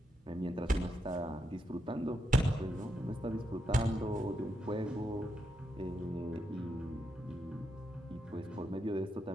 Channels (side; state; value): both; normal; correlation 0.83